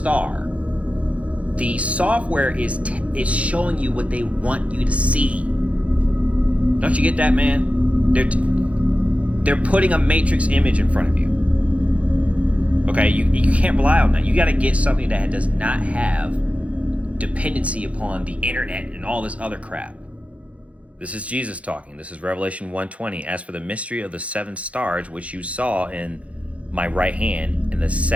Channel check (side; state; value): left; late; 0.064 ms